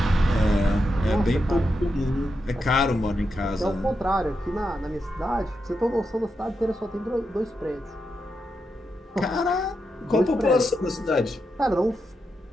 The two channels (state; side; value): normal; both; correlation 0.86